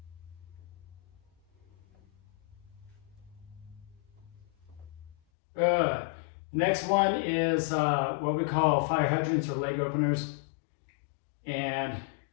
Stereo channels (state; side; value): drops out; right; at 5.2 s